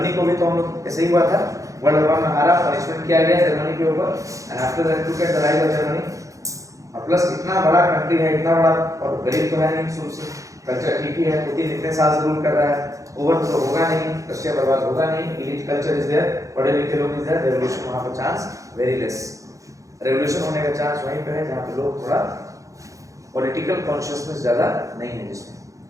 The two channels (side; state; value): left; late; 0.16 ms